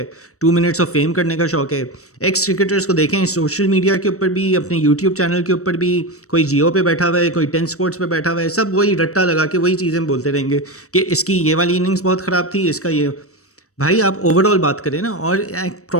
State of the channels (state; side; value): late; right; 0.65 ms